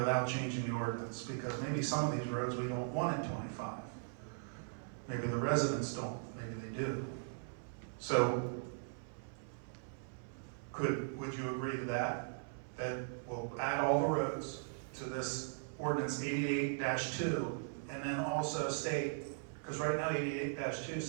changing the ordinance, because maybe some of these roads we don't want at 25. Maybe the residents don't. Maybe they do. So would you agree to that? that will add all the roads to this ordinance 88-2, and then also state, because right now 88-2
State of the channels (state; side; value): silent; left; 52 dB below the other